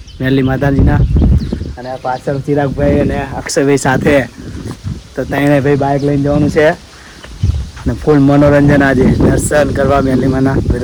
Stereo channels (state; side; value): identical; both; correlation 1.00